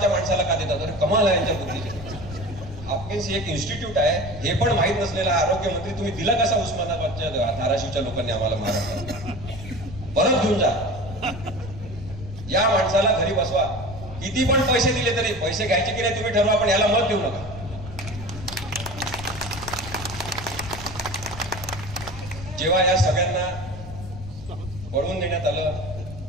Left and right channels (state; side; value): noise; left; rumble, 12 dB below the sound